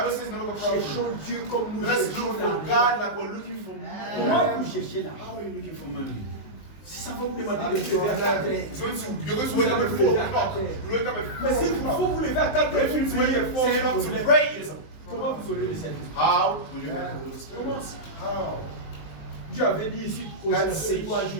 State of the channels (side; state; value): right; late; 19 ms